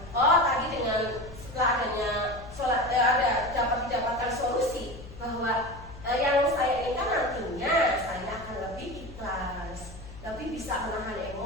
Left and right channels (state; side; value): noise; left; hum, 15 dB below the sound